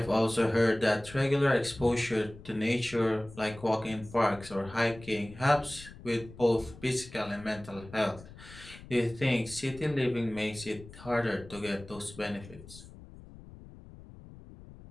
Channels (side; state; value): left; noise; rumble, 18 dB below the sound